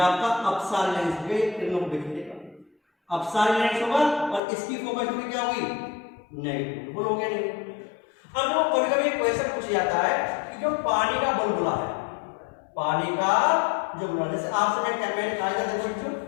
अपसारी लेंस हो गया, ये किरणों को बिखेरेगा, अपसारी लेंस होगा, और इसकी फोकस दूरी क्या होगी, नेगेटिव, बोलोगे नहीं। अब जो कभी कभी क्वेश्चन पूछा जाता है कि जो पानी का बुलबुला है, पानी का जो बुलबुला, जैसे आपसे मैं क्या मैंने कहा था, देखो बच्चों,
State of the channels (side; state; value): right; drops out; at 4.4 s